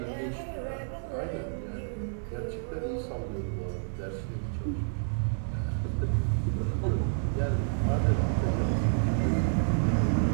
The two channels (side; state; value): left; silent; digital silence